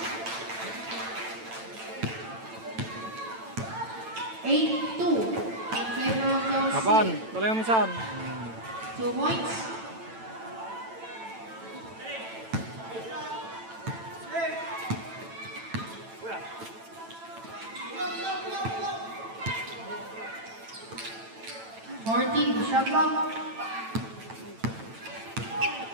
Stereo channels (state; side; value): late; left; 9.0 ms